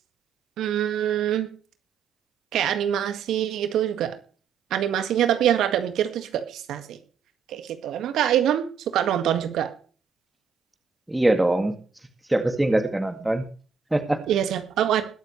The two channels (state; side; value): quieter; left; 6.3 dB